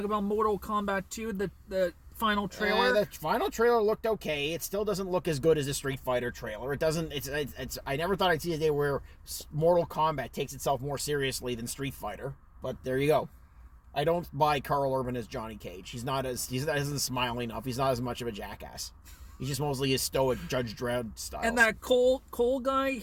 about Mortal Kombat 2, the final trailer? The final trailer looked okay. It still doesn't look as good as a Street Fighter trailer. It doesn't... It's. I never thought I'd see a day where Mortal Kombat takes itself more seriously than Street Fighter. But there you go. I don't buy Carl Urban as Johnny Cage. He doesn't smile enough. He's not as much of a jackass. He's just mostly his stoic Judge Dredd style. And that Cole guy,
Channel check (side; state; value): both; identical; correlation 1.00